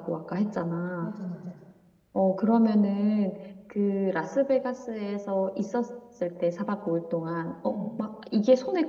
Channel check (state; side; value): identical; both; correlation 1.00